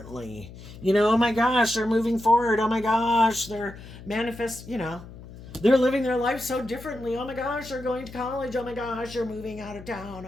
Oh my gosh, they're moving forward. Oh my gosh, they're they're living their life so differently. Oh my gosh, they're going to college. Oh my gosh, they're moving out of town.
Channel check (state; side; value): noise; left; hum, 16 dB below the sound